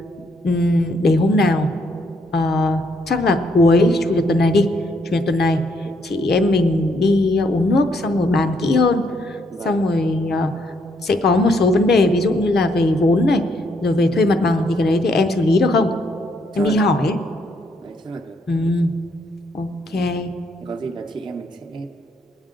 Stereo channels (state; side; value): normal; both; correlation 0.72